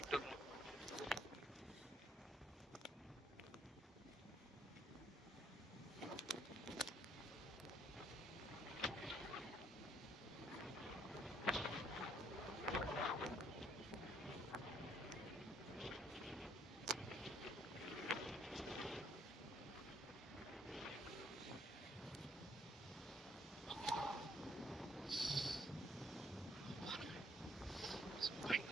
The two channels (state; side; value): normal; both; correlation 0.67